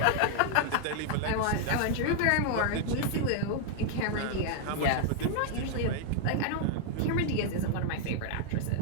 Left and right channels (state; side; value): different; both; correlation 0.00